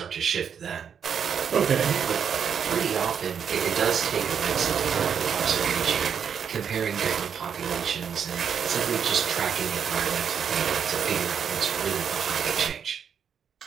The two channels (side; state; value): left; quieter; 7.4 dB